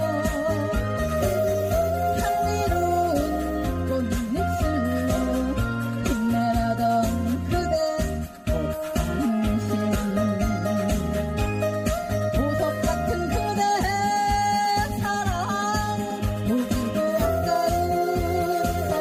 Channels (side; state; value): both; identical; correlation 1.00